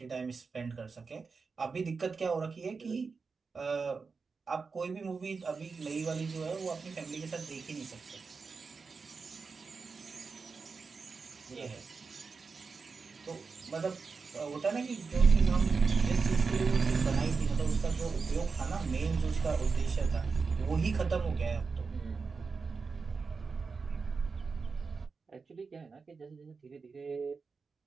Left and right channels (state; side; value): quieter; left; 4.8 dB